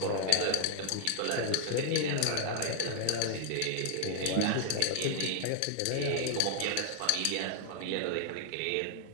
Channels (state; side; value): different; both; correlation 0.00